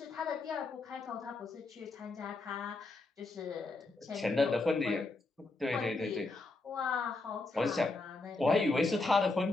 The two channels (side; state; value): right; quieter; 3.3 dB